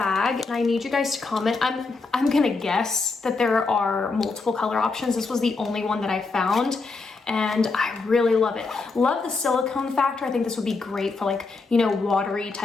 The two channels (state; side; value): quieter; right; 4.0 dB